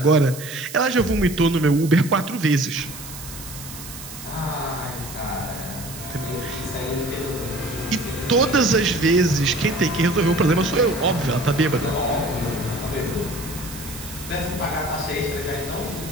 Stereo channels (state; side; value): noise; right; hiss, 13 dB below the sound